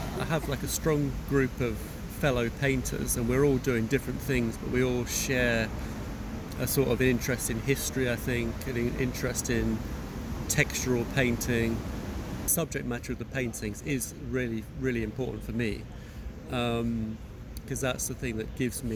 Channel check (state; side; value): identical; both; correlation 1.00